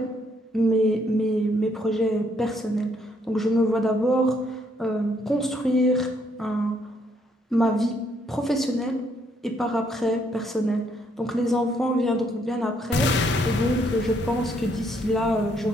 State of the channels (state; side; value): normal; both; correlation 0.71